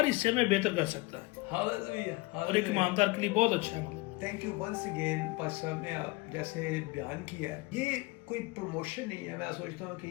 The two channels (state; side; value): quieter; right; 23.1 dB